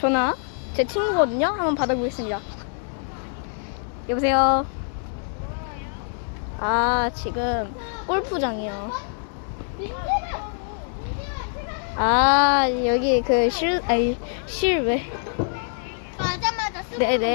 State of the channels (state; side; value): silent; right; 62 dB below the other